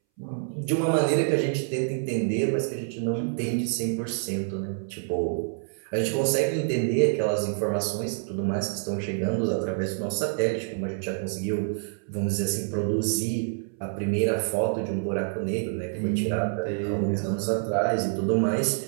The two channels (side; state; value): left; silent; 60 dB below the other